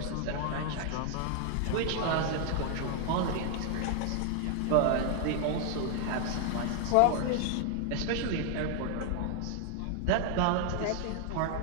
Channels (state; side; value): different; both; correlation 0.00